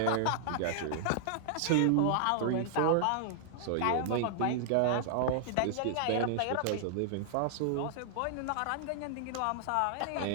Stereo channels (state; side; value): different; both; correlation -0.01